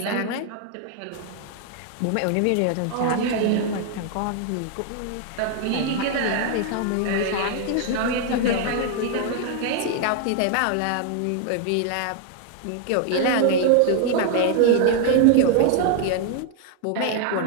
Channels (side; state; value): both; different; correlation 0.00